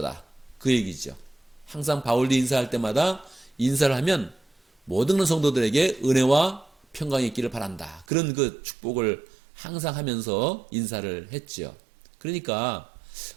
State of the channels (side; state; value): left; drops out; at 8.1 s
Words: 그 얘기죠. 항상 바울이 인사할 때마다 인사를 하면 모든 성도들에게 은혜와 평강이 있기를 바란다. 그런 그 축복을 항상 하면서 인사를 했죠. 그러니까